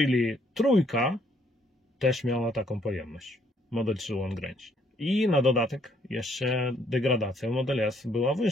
trójka też miała taką pojemność. Model 3 long range. I na dodatek jeszcze degradacja Model S była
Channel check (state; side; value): normal; both; correlation 0.68